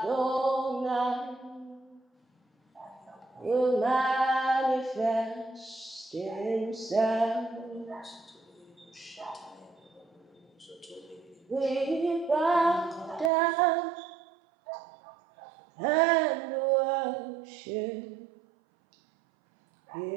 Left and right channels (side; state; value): left; drops out; at 13.3 s